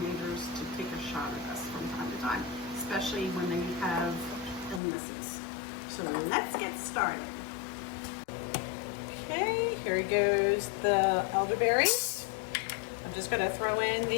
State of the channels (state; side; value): drops out; right; at 4.8 s